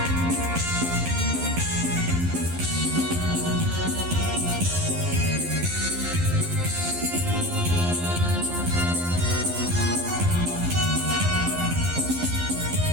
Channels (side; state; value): left; late; 12 ms